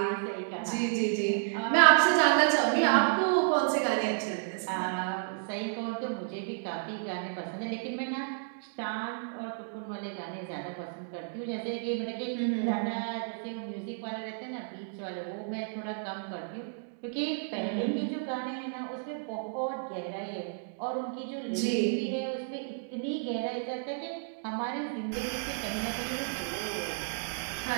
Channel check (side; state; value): left; silent; digital silence